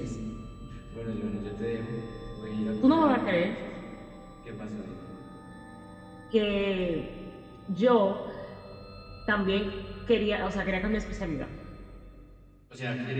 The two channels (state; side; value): identical; both; correlation 1.00